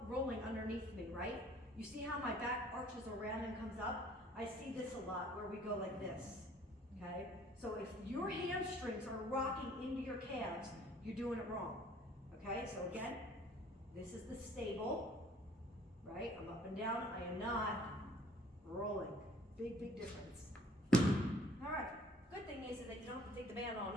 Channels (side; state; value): both; normal; correlation 0.56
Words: underneath me, right? You see how my back arches around and comes up? I see this a lot where we go like this, okay? So if your hamstrings are rocking into your calves, you're doing it wrong, okay? So again, this is the stable, right? I'm up and down, I am not rolling. Big, big difference. All right, good thing is that you don't have to take the band on